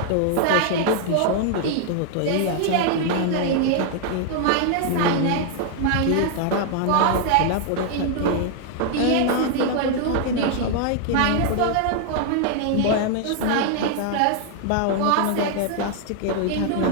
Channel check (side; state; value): both; different; correlation 0.00